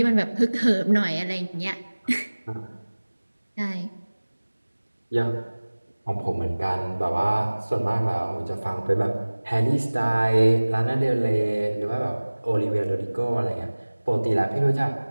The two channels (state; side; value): inverted; both; correlation -1.00